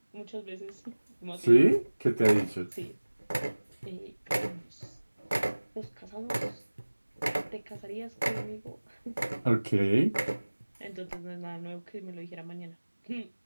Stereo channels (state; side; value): inverted; both; correlation -1.00